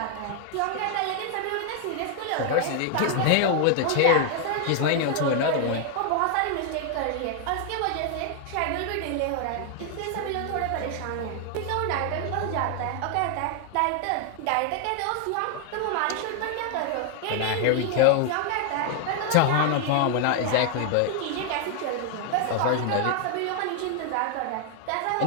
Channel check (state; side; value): different; both; correlation 0.00